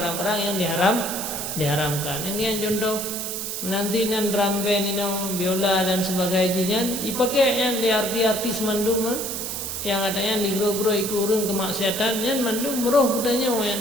yang diharamkan. Yang contoh menanti nan drum band ini biola dan sebagainya dipakai di artis mandum yang adanya di gro-gro ikurun kemaksiatan yang mandum meroh kutanya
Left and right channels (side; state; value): right; noise; hiss, 4 dB below the sound